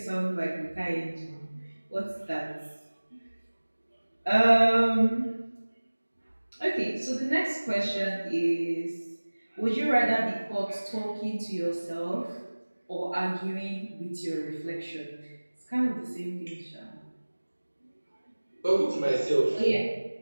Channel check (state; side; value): inverted; both; correlation -1.00